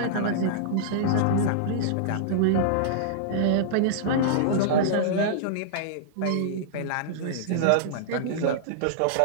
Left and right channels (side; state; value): both; different; correlation -0.02